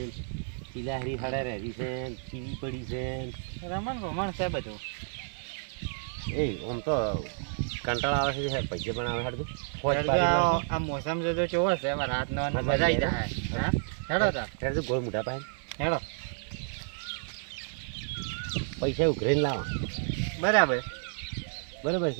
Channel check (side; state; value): left; silent; 57 dB below the other